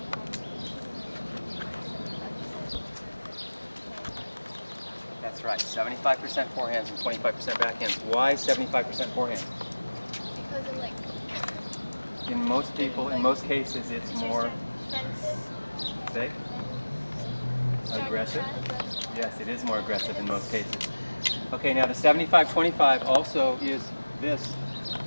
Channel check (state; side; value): inverted; both; correlation -1.00